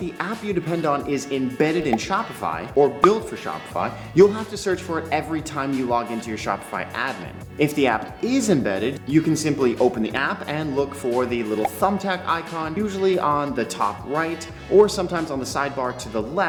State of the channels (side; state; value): both; identical; correlation 1.00